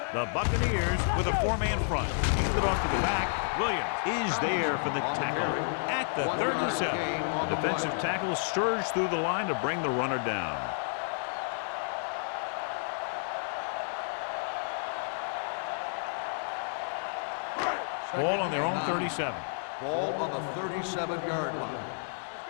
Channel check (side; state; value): right; silent; digital silence